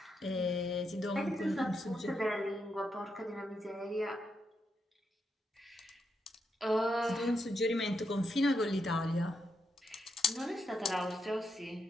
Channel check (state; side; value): normal; both; correlation 0.82